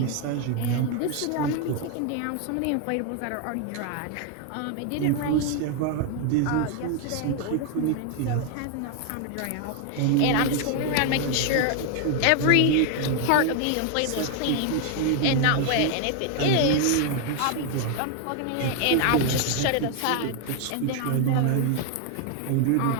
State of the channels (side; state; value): both; different; correlation 0.00